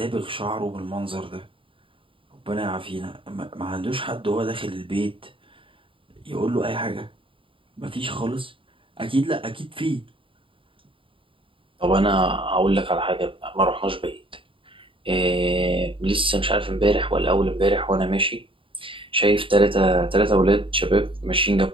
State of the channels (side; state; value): left; late; 0.25 ms